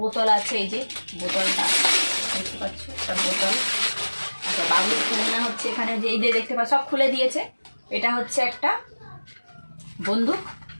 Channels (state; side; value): inverted; both; correlation -1.00